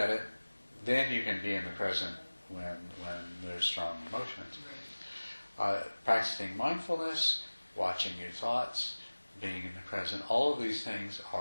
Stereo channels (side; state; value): both; inverted; correlation -1.00